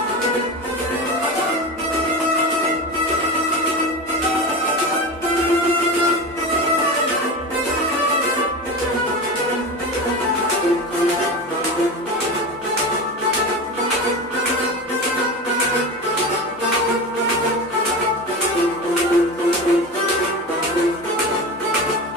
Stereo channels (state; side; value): normal; both; correlation 0.26